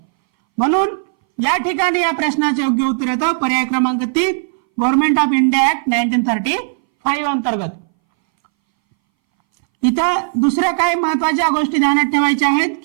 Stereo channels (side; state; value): left; silent; 63 dB below the other